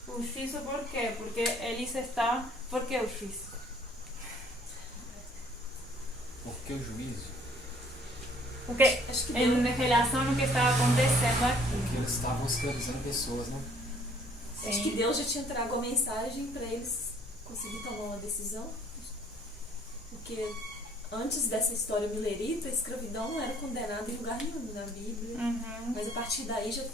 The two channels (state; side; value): normal; both; correlation 0.59